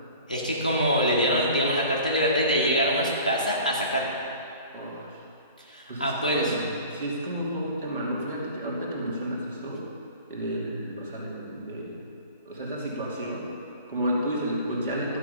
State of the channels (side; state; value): both; inverted; correlation -0.43